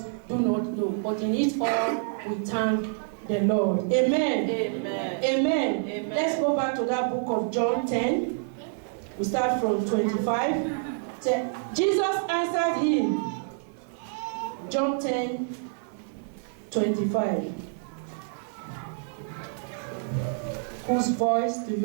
do not know. But in it all, we thank the Lord. Amen. Amen. Amen. Amen. Let's go back to that book of John 10. We start from 25. Jesus answered him. John 10, 25. Whose voice do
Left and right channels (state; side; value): silent; left; digital silence